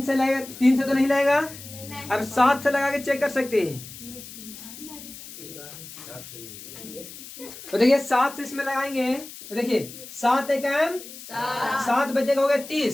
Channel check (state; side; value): noise; left; hiss, 14 dB below the sound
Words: से लगेगा। 3 से तो नहीं लगेगा। अब 7 से लगा के चेक कर सकते हैं। तो देखिए 7 से इसमें लगाएंगे तो देखिए 7 एकम 7 बचेगा, हो गया